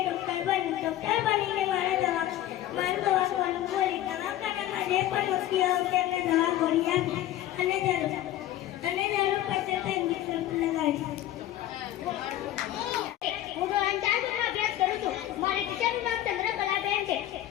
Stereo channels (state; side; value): quieter; right; 13.3 dB